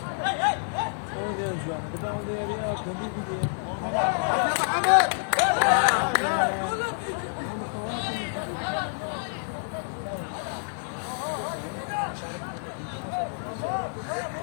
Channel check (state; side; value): silent; right; 59 dB below the other